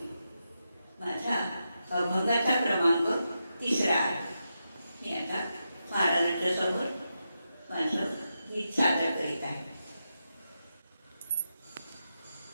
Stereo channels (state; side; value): inverted; both; correlation -0.87